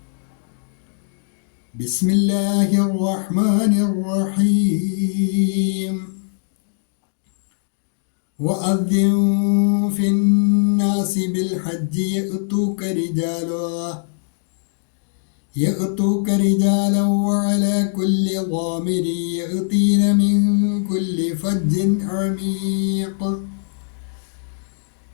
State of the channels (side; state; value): right; silent; digital silence